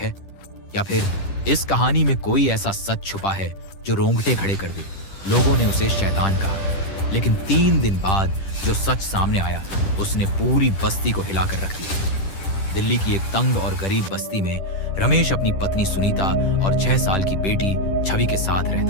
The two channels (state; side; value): late; right; 10 ms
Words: या फिर इस कहानी में कोई ऐसा सच छुपा है जो रोंगटे खड़े कर दे? लोगों ने उसे शैतान कहा, लेकिन 3 दिन बाद जो सच सामने आया उसने पूरी बस्ती को हिलाकर रख दिया। दिल्ली की एक तंग और गरीब बस्ती में रमेश अपनी पत्नी सुनीता और 6 साल की बेटी छवि के साथ